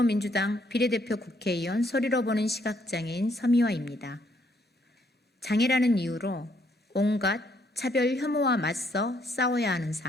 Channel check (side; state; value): both; normal; correlation 0.70